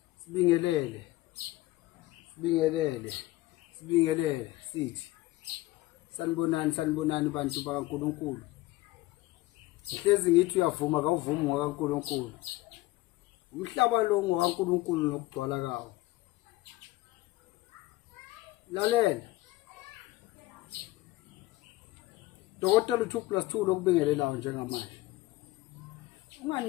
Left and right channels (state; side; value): quieter; right; 18.7 dB